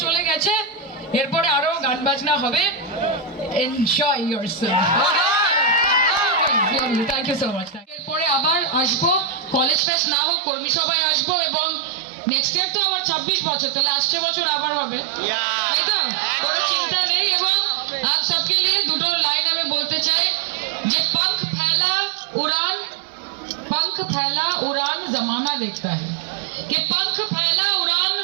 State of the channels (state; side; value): drops out; left; at 9.8 s